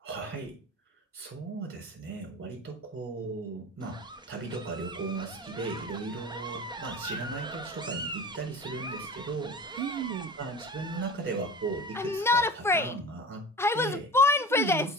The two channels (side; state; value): both; normal; correlation 0.35